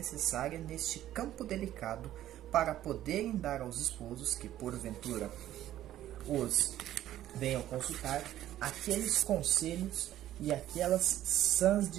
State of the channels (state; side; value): quieter; left; 12.9 dB